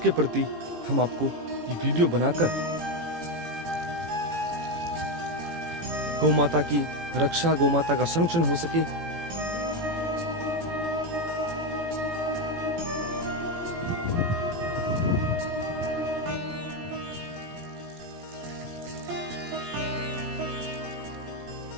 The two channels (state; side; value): late; left; 18 ms